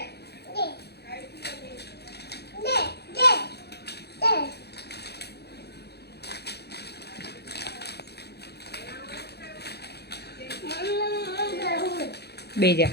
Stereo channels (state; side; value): late; right; 0.48 ms